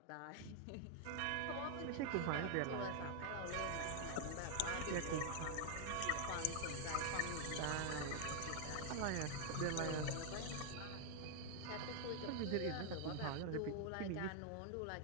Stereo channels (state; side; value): different; both; correlation 0.00